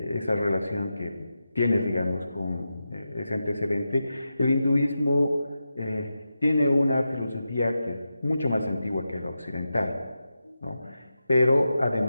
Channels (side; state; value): both; inverted; correlation -0.90